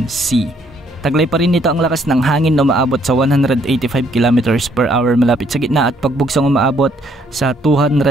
Sea. Taglay pa rin nito ang lakas ng hangin na umaabot sa 185 km per hour malapit sa gitna at pagbugsong umaabot sa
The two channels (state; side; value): normal; both; correlation 0.67